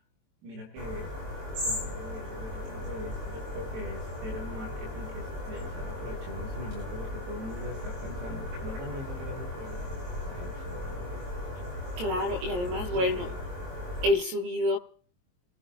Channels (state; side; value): late; left; 22 ms